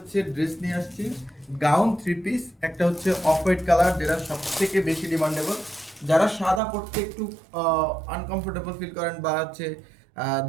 ড্রেস নিয়ে আসছি। গাউন থ্রি পিস, একটা হচ্ছে অফ হোয়াইট কালার, যেটা সব থেকে বেশি ডিমান্ডেবল। যারা সাদা পরতে একটু আনকমফোর্টেবল ফিল করেন বা হচ্ছে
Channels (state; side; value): drops out; left; at 6.6 s